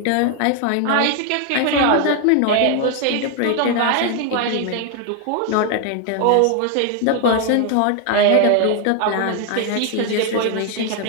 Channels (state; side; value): different; both; correlation 0.00